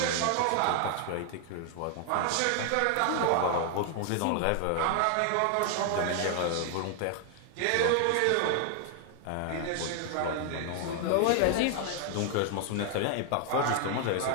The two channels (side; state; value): both; different; correlation 0.00